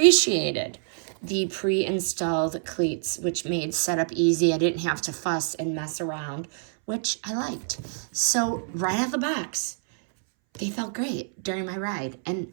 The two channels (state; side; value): silent; left; 61 dB below the other